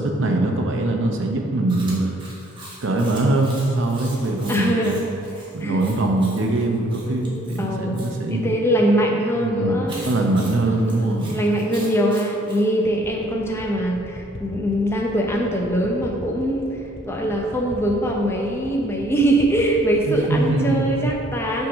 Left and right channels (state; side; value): normal; both; correlation 0.63